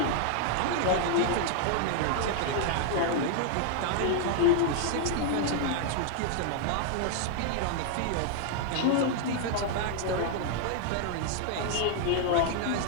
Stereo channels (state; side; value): different; both; correlation 0.00